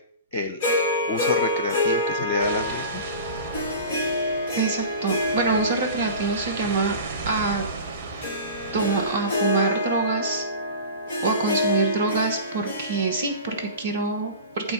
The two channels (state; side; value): inverted; both; correlation -0.34